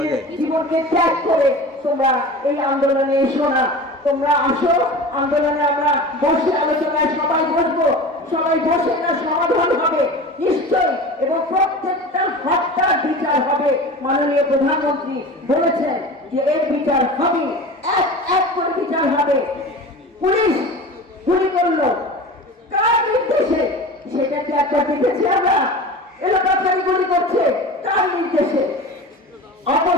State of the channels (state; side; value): normal; both; correlation 0.34